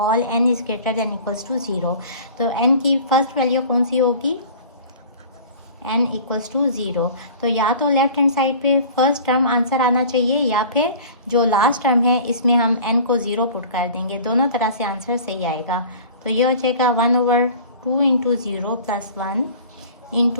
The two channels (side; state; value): both; inverted; correlation -0.43